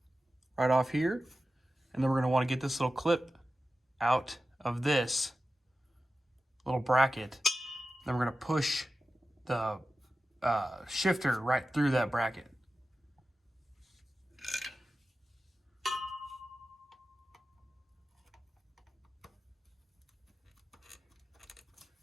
right off here. And then we're going to want to get this little clip out of this little bracket. Then we're going to push the shifter right through that bracket.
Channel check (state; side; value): normal; both; correlation 0.94